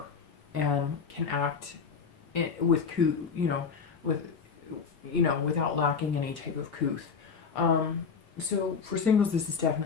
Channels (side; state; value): right; quieter; 5.8 dB